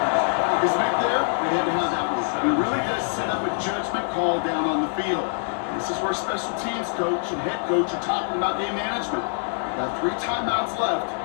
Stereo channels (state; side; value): silent; right; digital silence